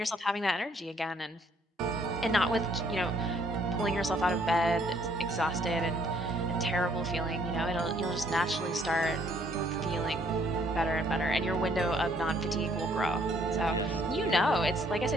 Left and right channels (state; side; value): normal; both; correlation 0.65